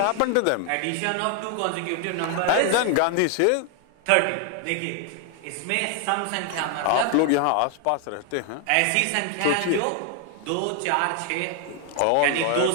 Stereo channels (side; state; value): both; different; correlation 0.00